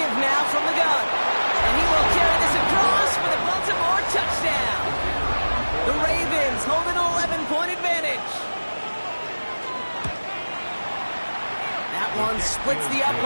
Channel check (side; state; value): both; inverted; correlation -1.00